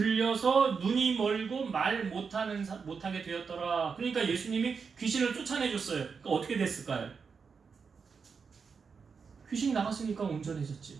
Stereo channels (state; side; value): quieter; left; 5.6 dB